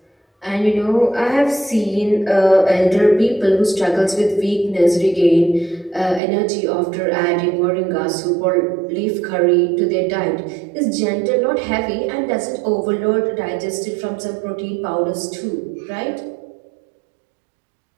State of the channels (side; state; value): left; drops out; at 6.2 s